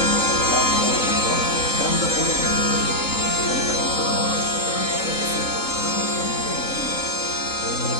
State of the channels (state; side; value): late; right; 3.8 ms